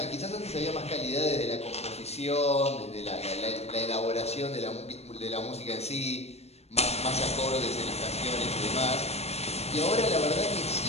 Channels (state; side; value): late; right; 0.31 ms